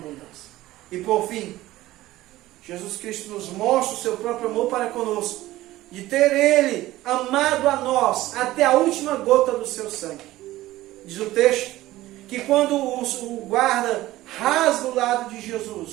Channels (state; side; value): quieter; left; 16.4 dB